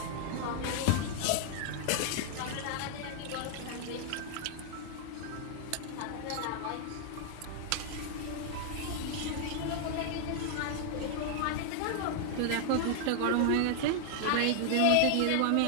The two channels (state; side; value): different; both; correlation 0.00